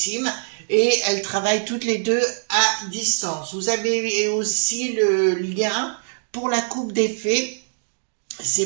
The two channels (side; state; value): left; silent; digital silence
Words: et elles travaillent toutes les deux à distance. Vous avez aussi le lien pour la coupe des fées.